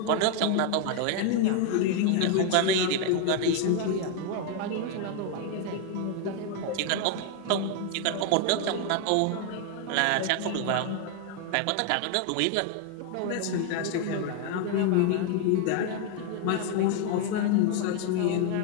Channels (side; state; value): both; different; correlation 0.01